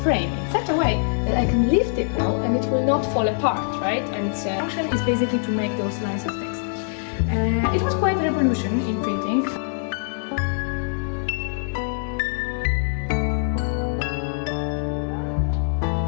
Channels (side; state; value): right; silent; digital silence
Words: frame in such a way that I can lift it now and it will not fall apart, right? And its function is basically to make those lines of text. It was quite a revolution in printing.